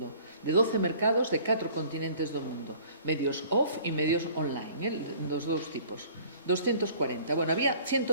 de 12 mercados de 4 continentes do mundo, medios off e medios online, dos dous tipos. 240. Bueno, había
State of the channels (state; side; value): inverted; both; correlation -0.51